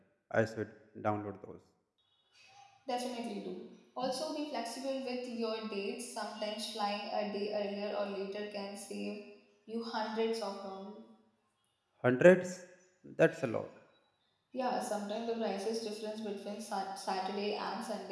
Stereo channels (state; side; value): identical; both; correlation 1.00